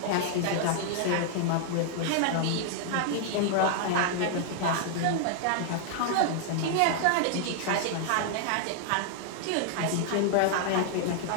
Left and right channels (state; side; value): different; both; correlation 0.00